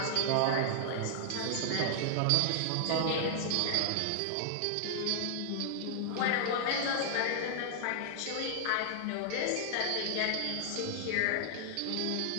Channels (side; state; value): both; different; correlation -0.01